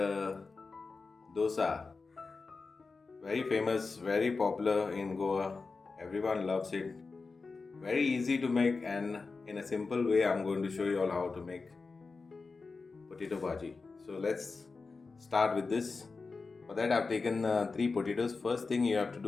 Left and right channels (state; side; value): quieter; right; 4.2 dB